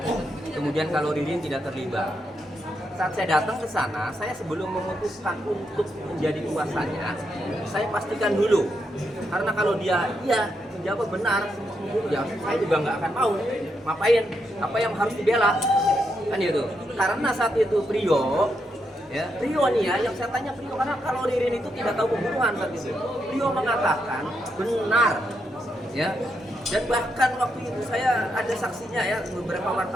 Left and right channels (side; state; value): both; normal; correlation 0.81